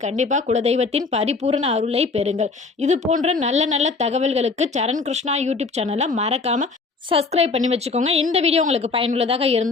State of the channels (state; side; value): quieter; right; 4.2 dB